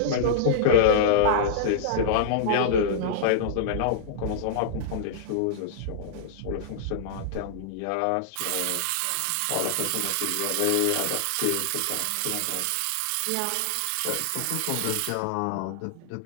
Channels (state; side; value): different; both; correlation -0.01